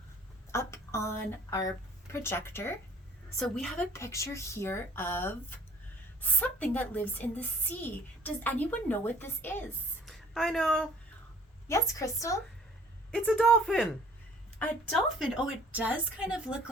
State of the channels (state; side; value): normal; both; correlation 0.53